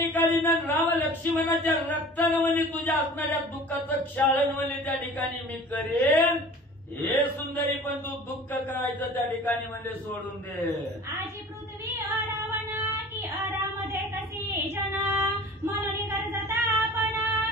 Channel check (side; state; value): both; normal; correlation 0.43